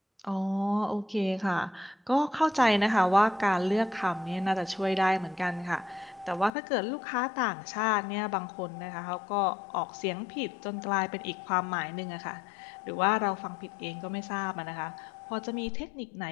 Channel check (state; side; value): drops out; right; at 6.5 s